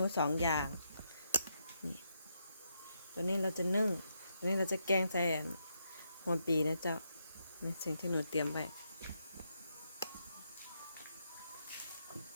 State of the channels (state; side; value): inverted; both; correlation -0.80